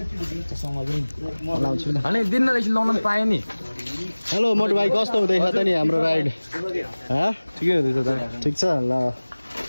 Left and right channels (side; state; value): both; inverted; correlation -1.00